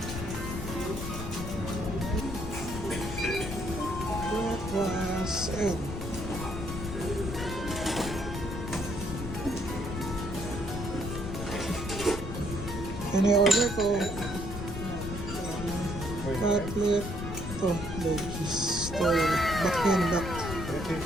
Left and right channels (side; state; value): left; noise; rumble, 6 dB below the sound